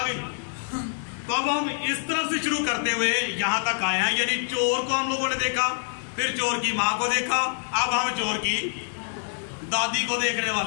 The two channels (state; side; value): silent; right; 55 dB below the other